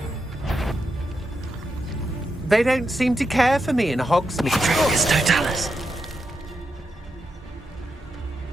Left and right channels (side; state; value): both; normal; correlation 0.85